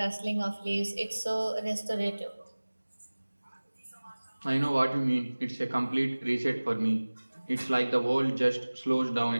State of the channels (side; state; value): both; inverted; correlation -1.00